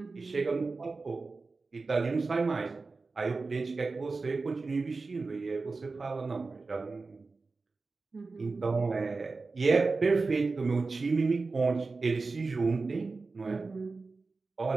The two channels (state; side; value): quieter; left; 3.9 dB